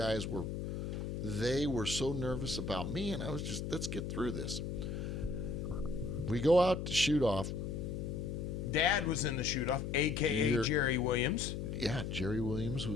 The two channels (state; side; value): noise; left; hum, 4 dB below the sound